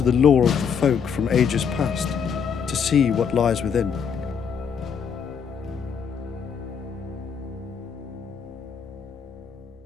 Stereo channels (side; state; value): right; quieter; 6.9 dB